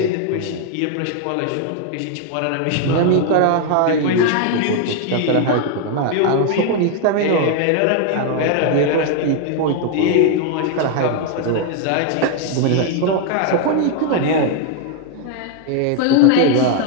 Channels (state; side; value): different; both; correlation 0.00